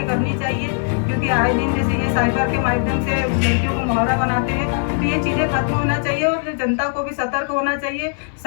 करनी चाहिए, क्योंकि आए दिन जैसे ये साइबर के माध्यम से लड़कियों को मुहावरा बनाते हैं, तो ये चीज़ें खत्म होना चाहिए और जनता को भी सतर्क होना चाहिए,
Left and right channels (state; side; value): silent; right; 56 dB below the other